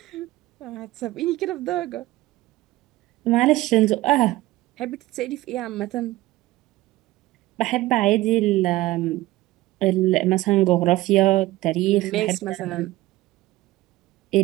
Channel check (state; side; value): quieter; left; 17.6 dB